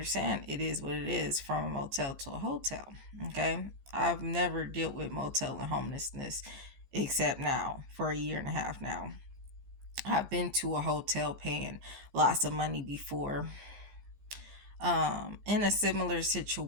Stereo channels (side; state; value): left; late; 15 ms